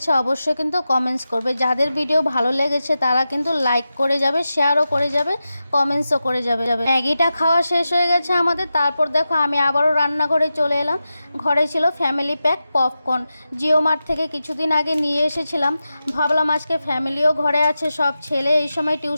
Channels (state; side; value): inverted; both; correlation -0.92